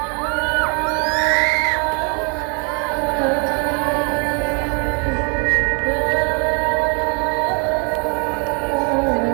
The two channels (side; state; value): left; quieter; 37.2 dB